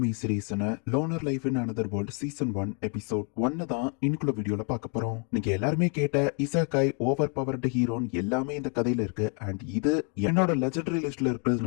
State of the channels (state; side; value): quieter; right; 39.4 dB